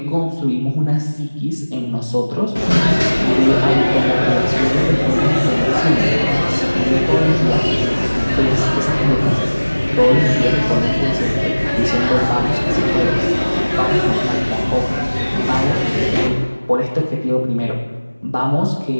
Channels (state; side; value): inverted; both; correlation -1.00